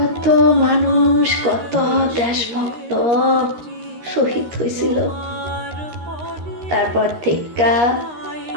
মানুষ, কত দেশভক্ত শহীদ হয়েছিল। তারপর থেকে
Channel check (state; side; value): late; left; 13 ms